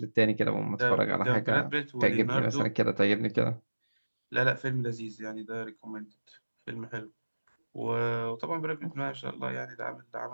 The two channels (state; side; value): inverted; both; correlation -1.00